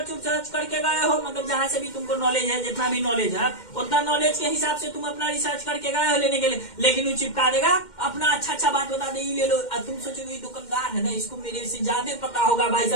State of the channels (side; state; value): right; late; 2.1 ms